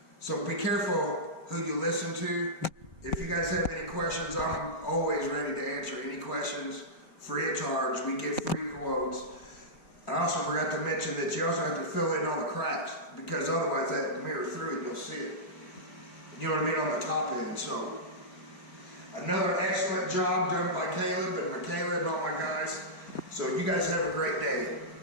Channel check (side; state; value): right; late; 4.2 ms